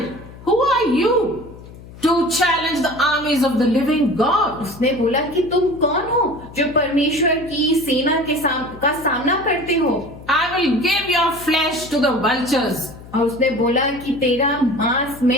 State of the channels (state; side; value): noise; left; hum, 18 dB below the sound